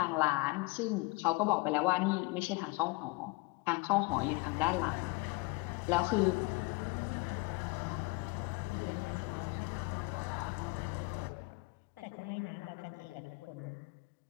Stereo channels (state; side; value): quieter; right; 27.2 dB